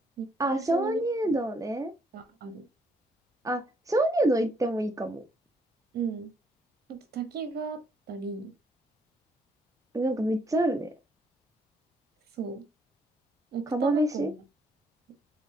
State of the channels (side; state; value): both; normal; correlation 0.70